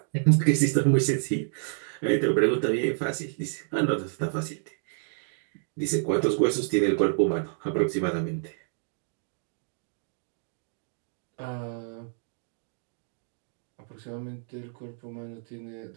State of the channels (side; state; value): left; silent; digital silence